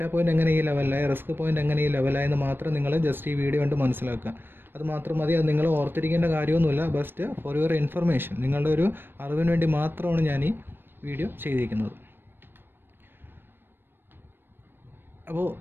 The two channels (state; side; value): late; left; 0.098 ms